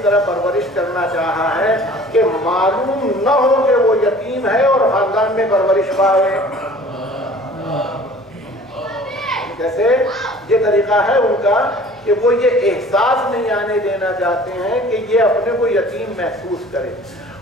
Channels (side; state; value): both; normal; correlation 0.48